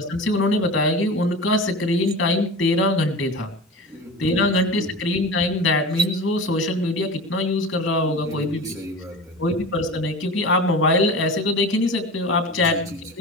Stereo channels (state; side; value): normal; both; correlation 0.32